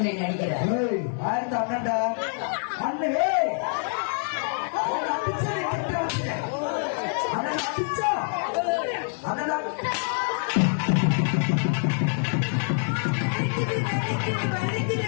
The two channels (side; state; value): right; silent; digital silence